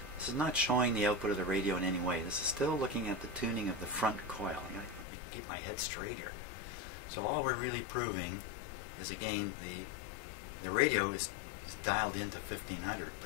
This is not showing the output of the radio in any way. This is still looking at the tuning of the front coil. I gotta keep my head straight here. So all we're really proving is, again, the radio is dialed into 1500,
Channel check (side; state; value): right; drops out; at 5.1 s